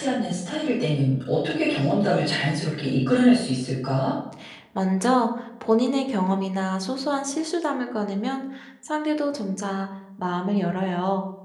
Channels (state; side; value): identical; both; correlation 1.00